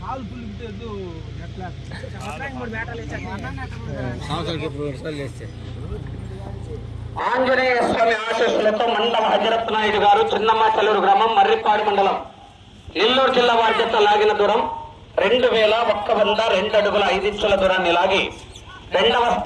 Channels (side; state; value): both; identical; correlation 1.00